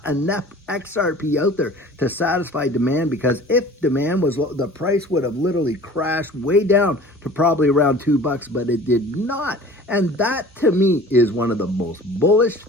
enough XRP out there to satisfy demand, because if demand was low, the price would have literally crashed way down to probably around $2, but it did not. And that, to me, is one of the most bullish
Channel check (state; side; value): normal; both; correlation 0.44